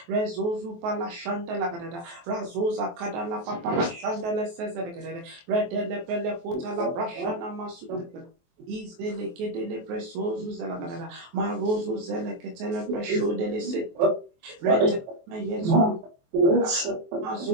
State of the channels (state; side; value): late; left; 23 ms